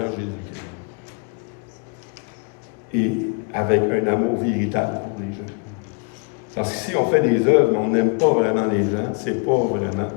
Jésus-Christ. Et avec un amour véritable pour les gens. Parce que si on fait des œuvres, mais on n'aime pas vraiment les gens, c'est pas vraiment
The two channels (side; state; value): right; quieter; 34.1 dB